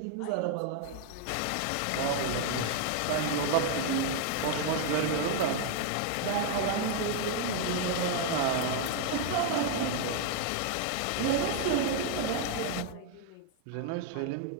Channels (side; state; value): both; different; correlation 0.00